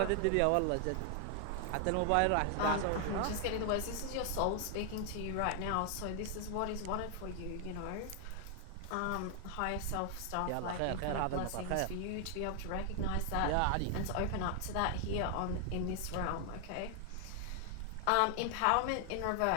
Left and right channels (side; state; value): both; different; correlation 0.00